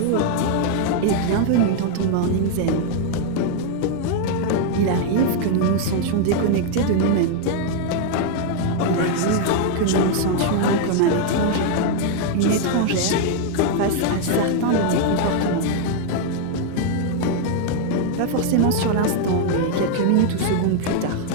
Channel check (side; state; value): both; different; correlation 0.00